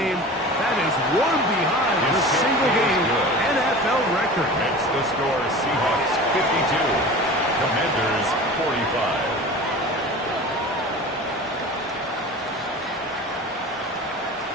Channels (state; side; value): normal; both; correlation 0.36